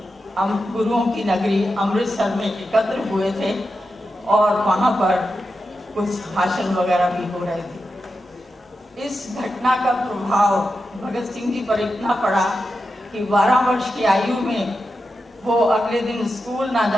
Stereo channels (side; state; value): both; normal; correlation 0.89